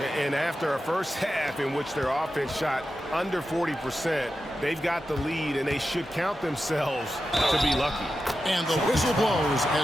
And after a first half in which their offense shot under 40%, they've got the lead, and they should count themselves to be lucky. And the whistle blows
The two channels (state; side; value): normal; both; correlation 0.91